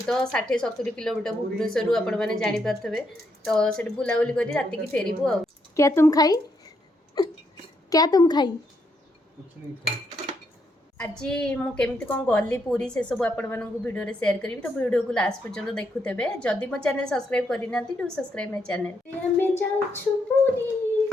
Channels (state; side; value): normal; both; correlation 0.77